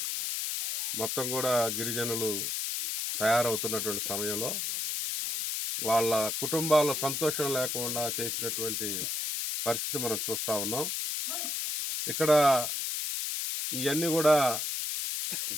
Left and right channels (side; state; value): left; noise; hiss, 2 dB below the sound